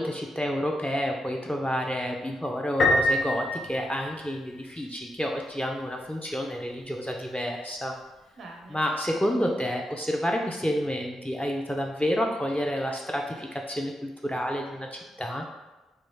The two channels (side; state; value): both; normal; correlation 0.85